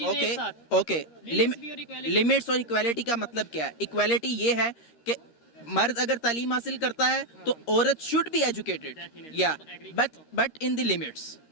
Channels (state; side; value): late; right; 13 ms